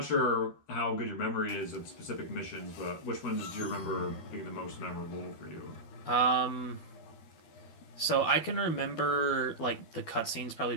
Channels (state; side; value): late; right; 12 ms